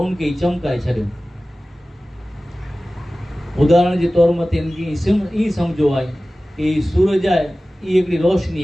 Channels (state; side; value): normal; both; correlation 0.97